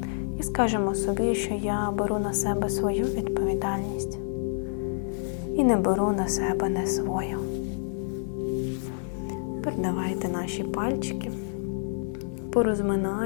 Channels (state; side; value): silent; right; 59 dB below the other